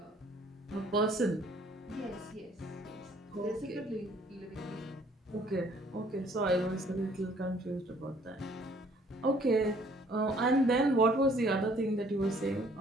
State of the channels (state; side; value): normal; both; correlation 0.60